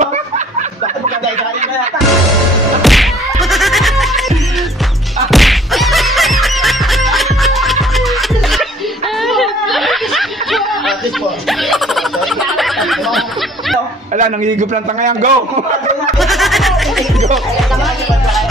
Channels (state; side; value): normal; both; correlation 0.56